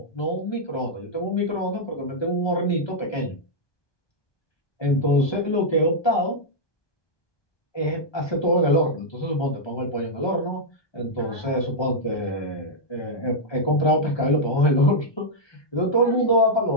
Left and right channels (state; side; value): late; right; 1.2 ms